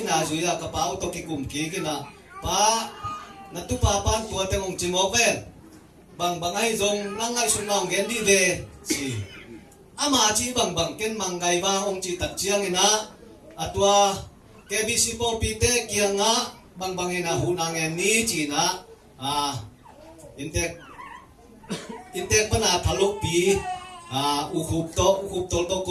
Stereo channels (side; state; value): both; identical; correlation 1.00